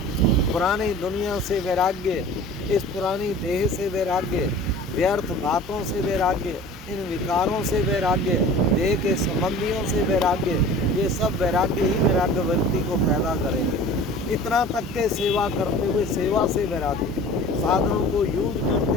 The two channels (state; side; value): normal; both; correlation 0.42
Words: पुरानी दुनिया से वैराग्य, इस पुरानी देह से वैराग्य, व्यर्थ बातों से वैराग्य, इन विकारों से वैराग्य, देह के संबंधियों से वैराग्य, ये सब वैराग्य ही वैराग्य व्यक्ति को पैदा करेंगे। इतना तक के सेवा करते हुए सेवा से वैराग्य, साधनों को यूज